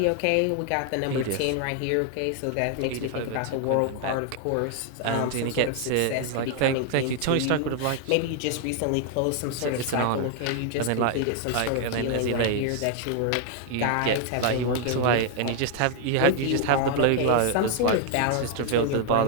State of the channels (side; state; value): both; different; correlation 0.00